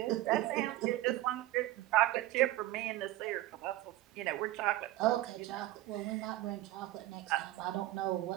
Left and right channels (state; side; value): quieter; left; 16.0 dB